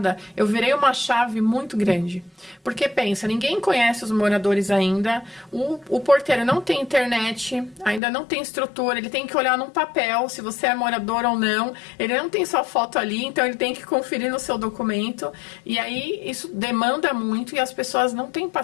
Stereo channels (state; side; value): drops out; right; at 8.0 s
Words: eu virei uma chave muito grande. Porque pensa, ninguém conhece os moradores ainda, o porteiro não tem internet, ainda não tem estrutura, ele tem que olhar num papel se você é morador ou não, ele não tem sua foto ali, então ele tem que conferir no seu documento, e aí isso demanda muito e as pessoas não têm